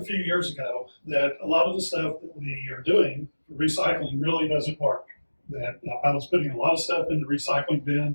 a few years ago that a lot of the stuff that we are doing for recycling really doesn't work. That I was putting a lot of stuff in the recycling bin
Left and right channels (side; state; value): both; inverted; correlation -1.00